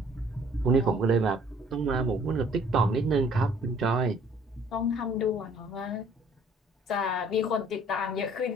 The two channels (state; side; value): normal; both; correlation 0.57